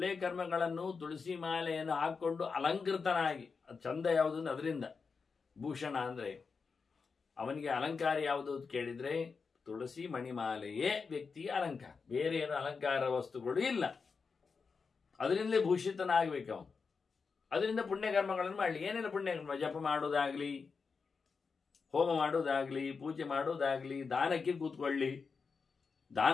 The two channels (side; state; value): right; quieter; 5.1 dB